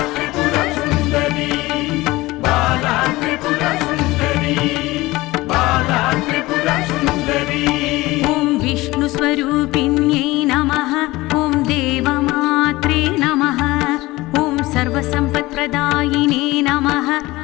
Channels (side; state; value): right; quieter; 19.7 dB